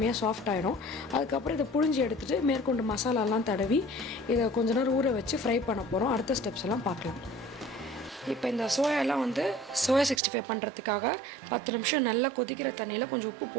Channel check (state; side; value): drops out; left; at 10.2 s